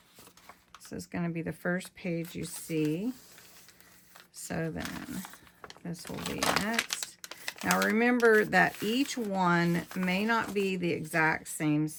This is going to be the first page you see. So then this will be next. Now remember that each one may not be the exact same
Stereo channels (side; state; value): both; identical; correlation 1.00